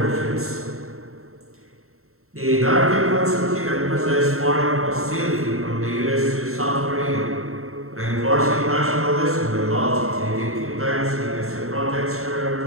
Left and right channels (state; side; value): late; left; 0.63 ms